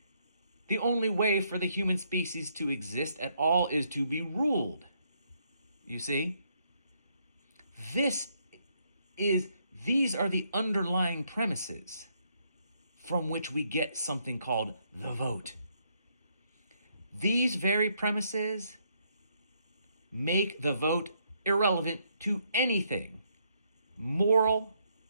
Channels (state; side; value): inverted; both; correlation -0.73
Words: The only way for the human species to exist at all is to be ruled. You see? These are the underlying premises from which we get something called the vote. These very premises make the vote irrelevant to anything, moral